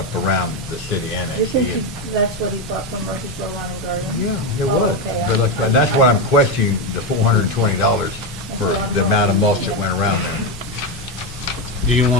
around the city You annex. think that's what he bought from Murphysboro Lawn and Garden? Yeah, it Oh, was, okay. but like, and that's what I'm questioning, the $420 for That's what I'm the amount of wondering. mulch that went around there. Do you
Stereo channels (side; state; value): both; normal; correlation 0.10